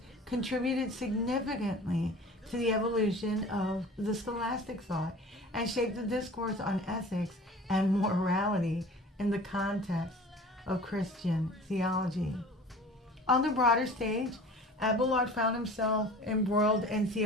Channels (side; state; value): both; normal; correlation 0.42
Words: contributed significantly to the evolution of the scholastic thought and shaped the discourse on ethics and morality in the context of Christian theology. On the broader stage, Abelard found himself embroiled in